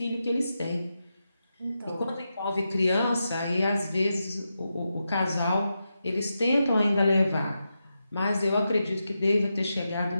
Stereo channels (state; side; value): inverted; both; correlation -0.88